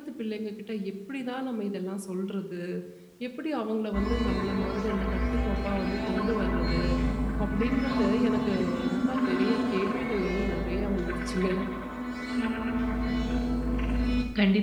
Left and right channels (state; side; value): identical; both; correlation 1.00